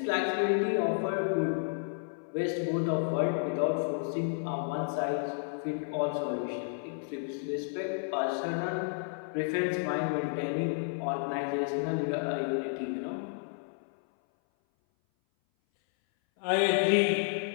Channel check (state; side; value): silent; right; 57 dB below the other